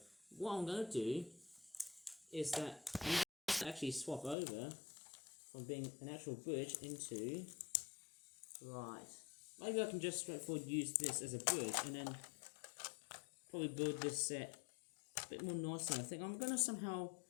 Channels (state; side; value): drops out; right; at 4.4 s